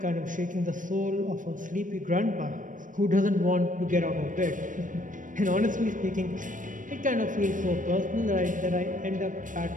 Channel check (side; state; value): left; late; 0.38 ms